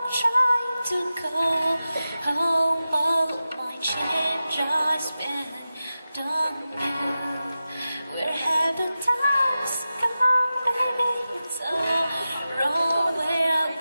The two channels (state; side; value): inverted; both; correlation -0.94